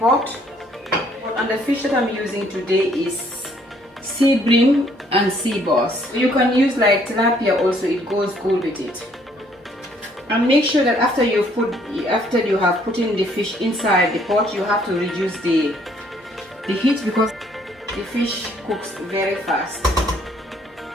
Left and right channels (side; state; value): both; normal; correlation 0.65